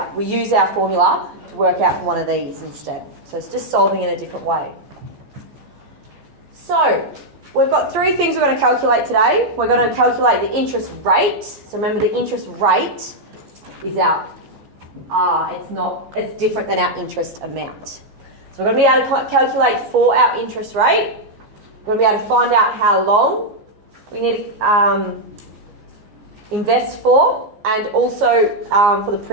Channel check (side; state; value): left; late; 14 ms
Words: We use our formula to work out for one of these instead. So it's just solving in a different way. So we've got 3 things we're going to calculate today. We're going to calculate the interest rate. So remember, the interest rate is our it's different than our interest amount. So we're going to be able to calculate for our interest rate. We're going to be able to find out how long we need to invest for, and also for the